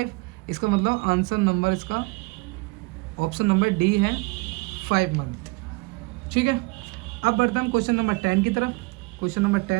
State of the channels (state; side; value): quieter; left; 26.7 dB